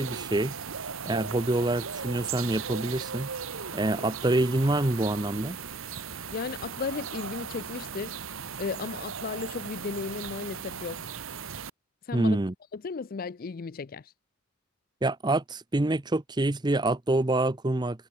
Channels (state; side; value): normal; both; correlation 0.61